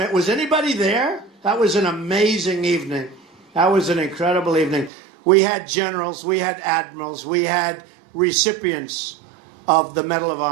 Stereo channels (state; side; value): drops out; left; at 4.9 s